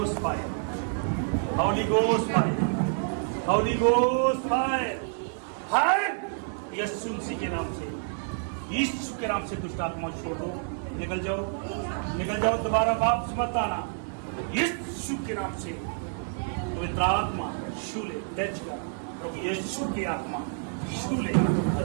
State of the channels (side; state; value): left; silent; 59 dB below the other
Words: फायर, हॉली गोस्ट फायर, हॉली गोस्ट फायर, फायर यीशु मसीह के नाम से, यीशु के नाम से दुष्ट आत्मा छोड़ दो, निकल जाओ, निकल जाओ, दोबारा वापस मत आना। यीशु के नाम से पवित्र आत्मा छू ले, टच कर, प्रभु यीशु की आत्मा छू ले